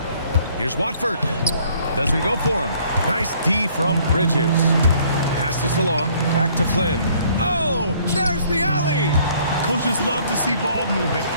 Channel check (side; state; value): both; inverted; correlation -0.60